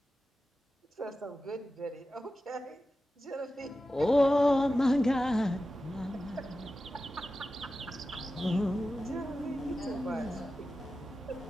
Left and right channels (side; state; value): both; normal; correlation 0.93